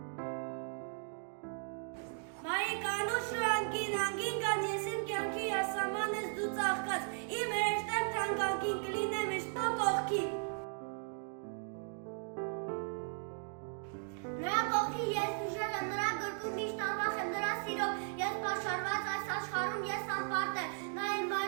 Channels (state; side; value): silent; left; 53 dB below the other